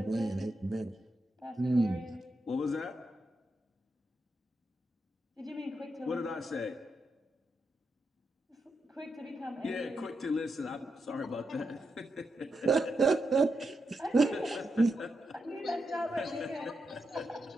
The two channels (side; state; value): both; normal; correlation 0.85